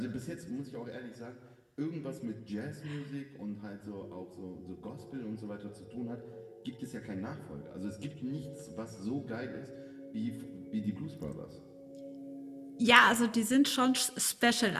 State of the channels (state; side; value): identical; both; correlation 1.00